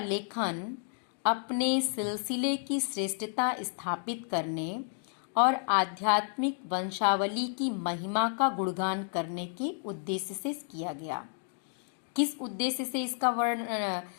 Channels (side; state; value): right; silent; 57 dB below the other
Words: अपने सिलसिले की श्रेष्ठता स्थापित करने और आध्यात्मिक वंशावली की महिमा का गुणगान करने के उद्देश्य से किया गया। किस उद्देश्य से इसका